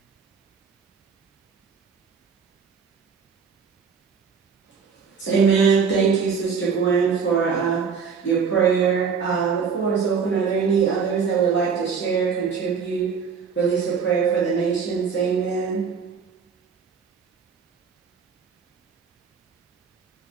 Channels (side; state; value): left; quieter; 6.0 dB